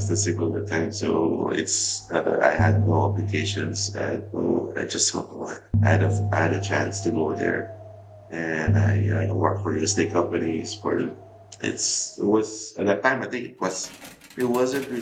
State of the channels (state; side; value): identical; both; correlation 1.00